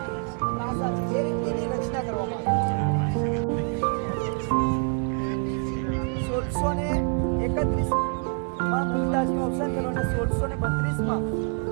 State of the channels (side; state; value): left; quieter; 38.4 dB